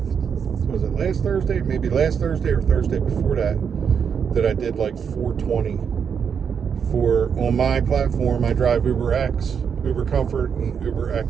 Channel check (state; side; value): quieter; left; 7.0 dB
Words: it last Thursday? Maybe last Thursday or Thursday before that I did like 420 on my platform. I drive Uber X, Uber Comfort, and Uber